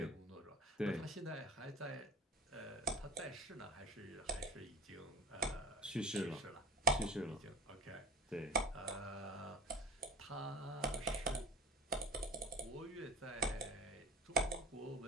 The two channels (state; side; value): normal; both; correlation 0.33